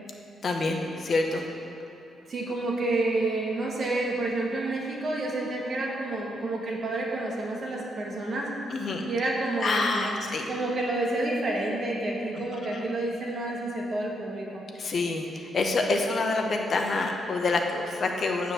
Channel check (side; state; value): both; normal; correlation 0.77